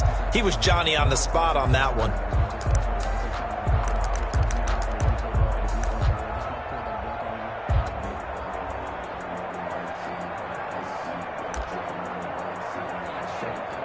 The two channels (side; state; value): both; identical; correlation 1.00